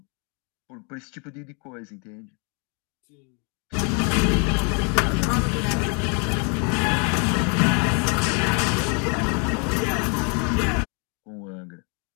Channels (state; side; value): quieter; right; 36.2 dB